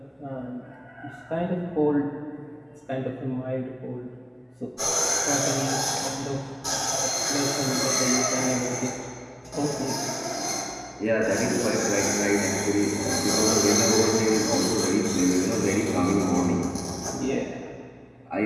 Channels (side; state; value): both; identical; correlation 1.00